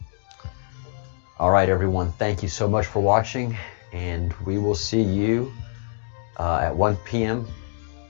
All right, everyone, thank you so much for watching, and we will see you at 1 p.m.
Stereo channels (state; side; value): silent; right; digital silence